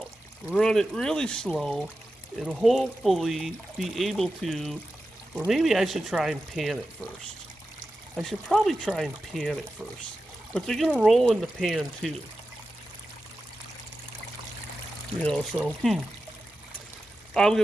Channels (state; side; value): normal; both; correlation 0.92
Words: run it really slow, and hopefully be able to, or maybe I should try and pan it first. I should probably try and pan it first. But they're going to roll in the pan too. You know, so, I'm going